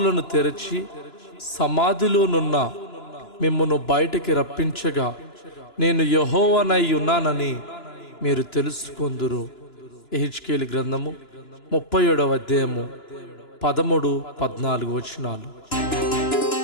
తెరచి సమాధిలోనున్న మిమ్మును బయటికి రప్పించగా నేను యెహోవానై ఉన్నానని మీరు తెలుసుకొందురు. యెహెజ్కేలు గ్రంథము 37వ అధ్యాయము 13-14 వచనాలు.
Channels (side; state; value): right; late; 2.9 ms